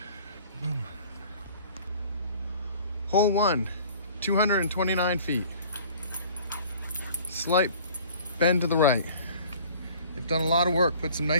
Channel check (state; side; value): inverted; both; correlation -0.49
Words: Hole 1, 229 feet. Slight bend to the right. They've done a lot of work, put some